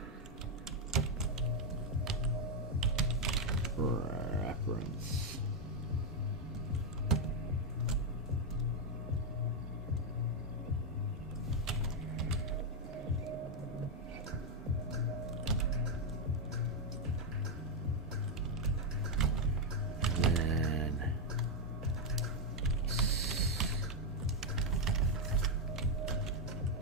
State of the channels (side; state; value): both; normal; correlation 0.01